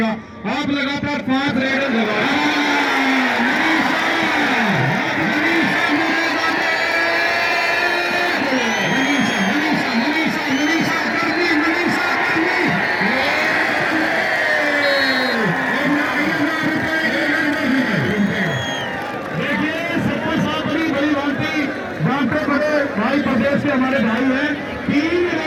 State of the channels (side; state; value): both; identical; correlation 1.00